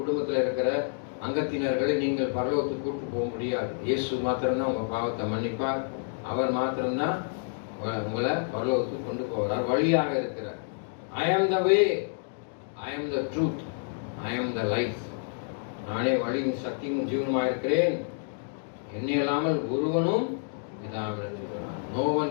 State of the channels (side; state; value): right; silent; digital silence